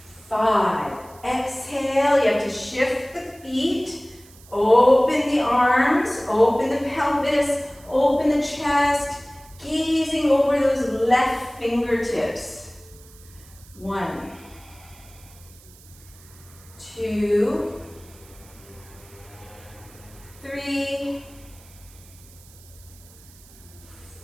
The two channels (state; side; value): noise; right; hiss, 24 dB below the sound